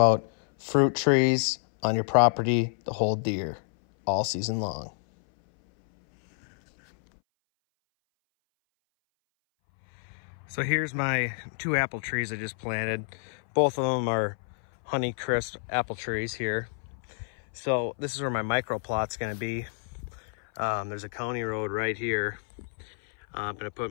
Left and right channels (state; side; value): silent; right; 59 dB below the other